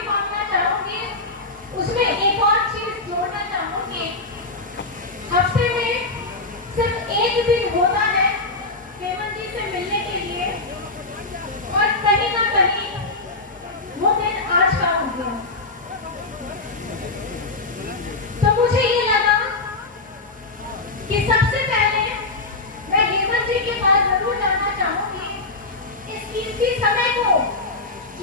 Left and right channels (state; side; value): quieter; right; 3.3 dB